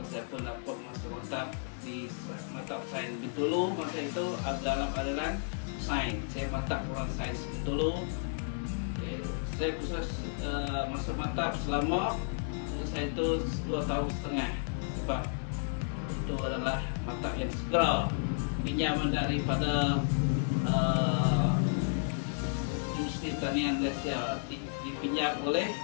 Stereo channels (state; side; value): silent; right; digital silence